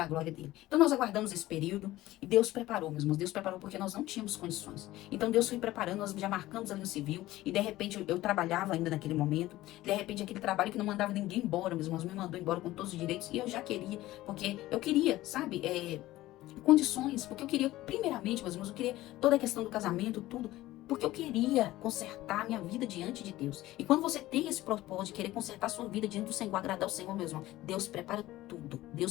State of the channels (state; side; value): quieter; right; 16.5 dB